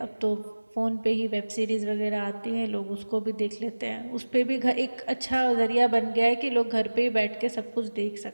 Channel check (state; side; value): inverted; both; correlation -1.00